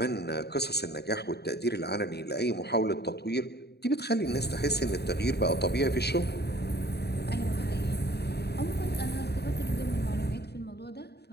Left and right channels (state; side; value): late; right; 0.48 ms